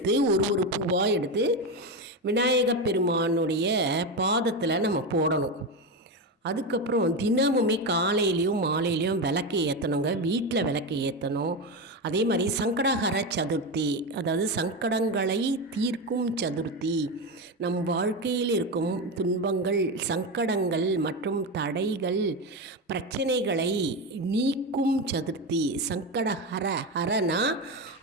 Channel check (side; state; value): both; normal; correlation 0.15